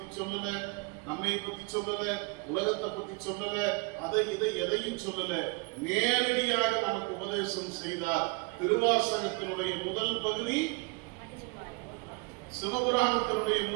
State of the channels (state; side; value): quieter; left; 29.2 dB